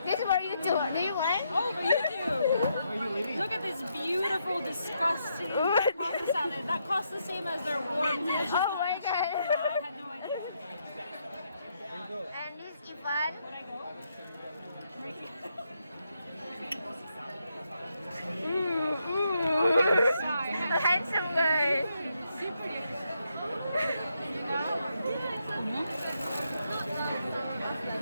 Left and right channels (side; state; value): both; inverted; correlation -0.79